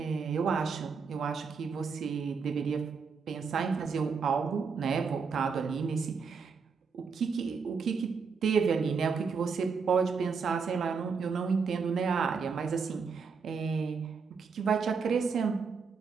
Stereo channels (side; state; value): left; quieter; 5.4 dB